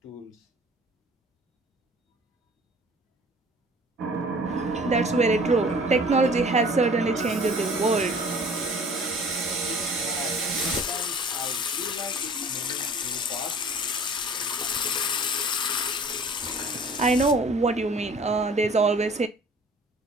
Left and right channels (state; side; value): normal; both; correlation 0.48